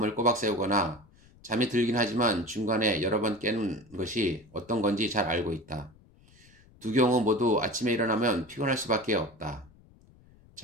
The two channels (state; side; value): noise; left; rumble, 27 dB below the sound